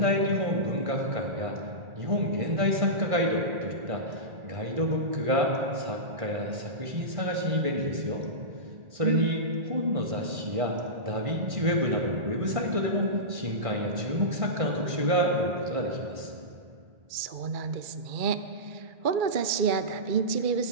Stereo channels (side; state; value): left; late; 1.5 ms